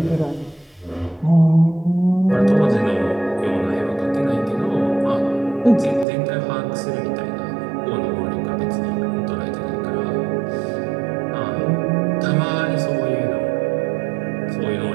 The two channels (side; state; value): left; drops out; at 6.1 s